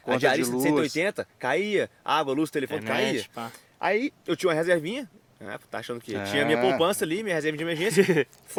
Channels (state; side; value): identical; both; correlation 1.00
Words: diarista de de luz. 180 caía. Água, luz, telefone caía. Internet, pá. Aí eu tinha uma reservinha. Tá achando que É. tinha minha poupança ali, minha reserva de emergência.